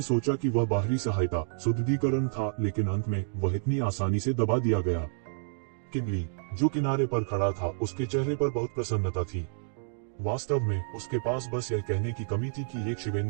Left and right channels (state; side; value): silent; left; digital silence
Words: सोचा कि वह बाहरी सहायता, सुदृढ़ीकरण था, लेकिन अंत में वह इतनी आसानी से दबा दिया गया। किनली, जो किनारे पर खड़ा था, उसके चेहरे पर बहुत प्रसन्नता थी। वास्तव में उसके पास बस यह कहने की कमी थी कि ये शिवेन